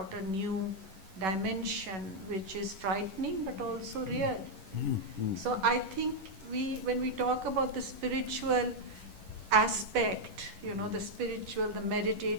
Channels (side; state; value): left; late; 11 ms